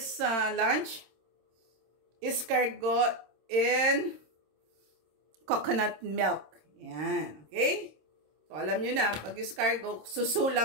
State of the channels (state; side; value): late; left; 26 ms